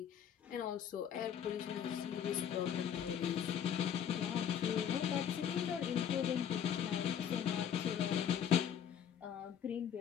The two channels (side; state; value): right; quieter; 8.8 dB